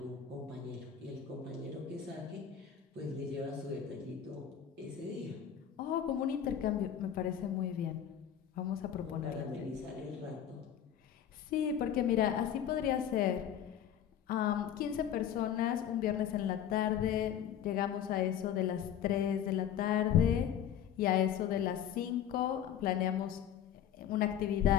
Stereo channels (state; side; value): quieter; right; 9.4 dB